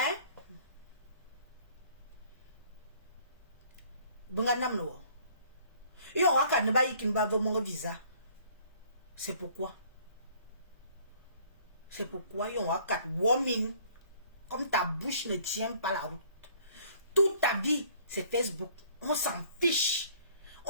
Bangandam no. Yo waka ne ba yikin ba mon visa. C'est pourquoi? C'est pourquoi yo waka woman comme ta bouche ne tient pas la route. Toute ta vie, c'est Facebook. On s'en fiche.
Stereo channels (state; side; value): inverted; both; correlation -0.57